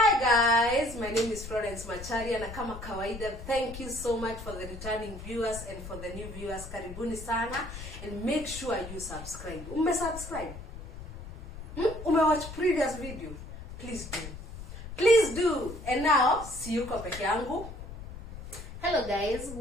guys, my name is Florence Macharia na kama kawaida, thank you so much for the returning viewers and for the new viewers. Karibuni sana and make sure you subscribe. Subscribe? Watch previous video? Please do. Please do. And now, see you peke yangu. Hello guys,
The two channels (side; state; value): left; noise; rumble, 12 dB below the sound